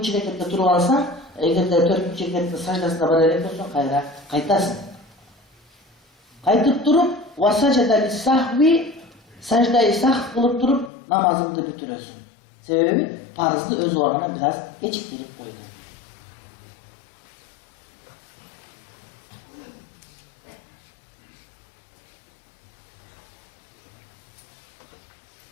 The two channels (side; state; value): right; drops out; at 10.9 s